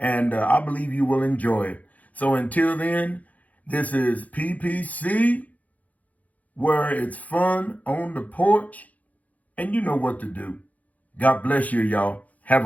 I believe you will enjoy it. So until then, this is PPC, where it's fun on the porch, and you know what to do. God bless you, y'all. Have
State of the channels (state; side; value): late; right; 0.074 ms